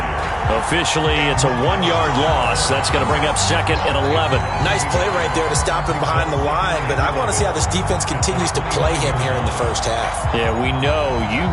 Officially, it's a 1-yard loss. That's going to bring up 2nd and 11. Nice play right there to stop him behind the line, but I want to see how this defense continues to play him here in the first half. Yeah, we know. You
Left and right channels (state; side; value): identical; both; correlation 1.00